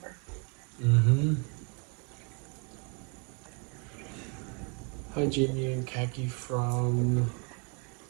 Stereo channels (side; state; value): left; quieter; 34.7 dB